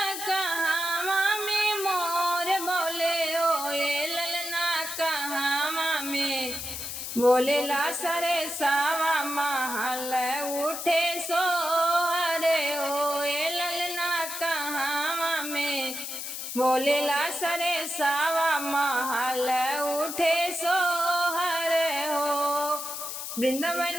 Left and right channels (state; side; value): noise; left; hiss, 6 dB below the sound